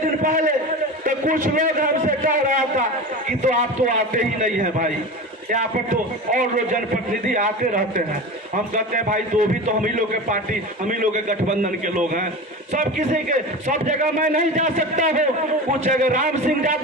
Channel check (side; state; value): both; normal; correlation 0.29